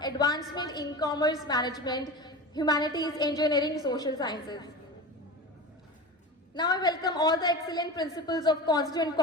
advancement in commerce, management, humanities, engineering, social sciences. Now I welcome all the excellent principals of constituent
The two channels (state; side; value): normal; both; correlation 0.29